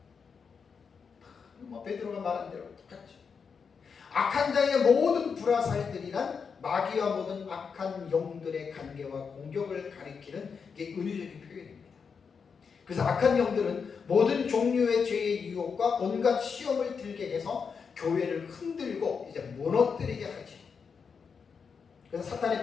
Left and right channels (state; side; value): quieter; right; 5.9 dB